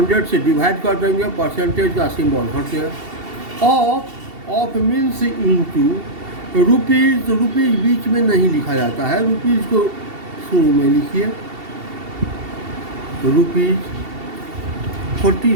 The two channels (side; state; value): left; late; 2.7 ms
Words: से डिवाइड कर देंगे, परसेंटेज का सिंबल हट गया। Of means into rupees, rupees बीच में नहीं लिखा जाता है, रुपीज़ को शुरू में लिखिए, रुपीज़